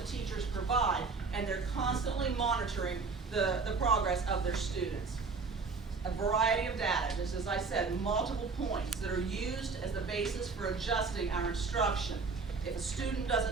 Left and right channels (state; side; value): quieter; left; 4.5 dB